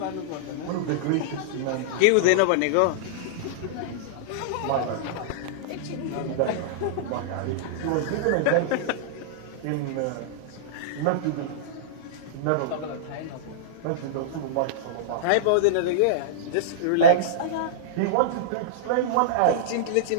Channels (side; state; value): both; different; correlation -0.03